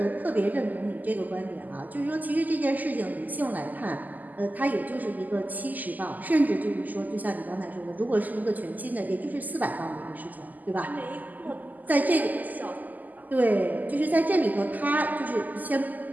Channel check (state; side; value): late; left; 0.082 ms